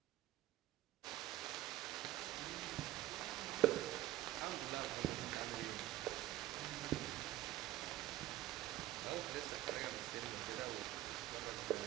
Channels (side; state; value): left; quieter; 14.9 dB